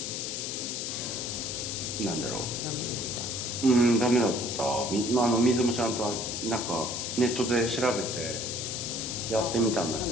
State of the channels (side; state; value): left; noise; hiss, 4 dB below the sound